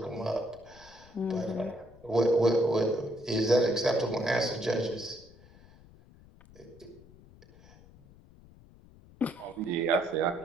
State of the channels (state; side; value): noise; left; rumble, 24 dB below the sound